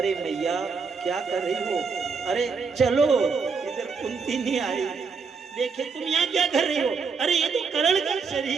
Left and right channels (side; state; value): left; quieter; 5.2 dB